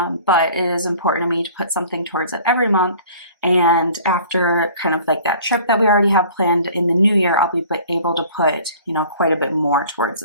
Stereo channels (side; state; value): both; inverted; correlation -0.49